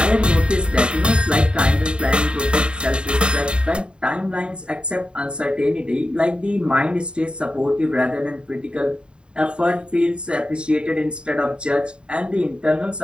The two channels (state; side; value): late; left; 0.052 ms